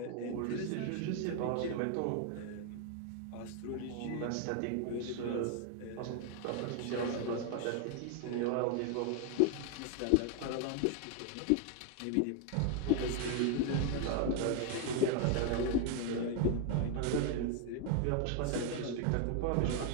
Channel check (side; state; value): both; different; correlation 0.01